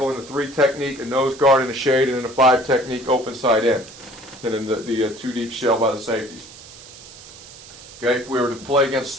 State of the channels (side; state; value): right; noise; hiss, 18 dB below the sound